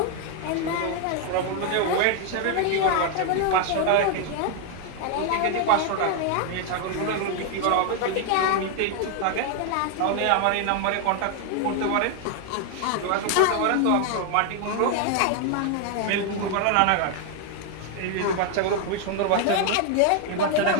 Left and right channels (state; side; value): different; both; correlation 0.00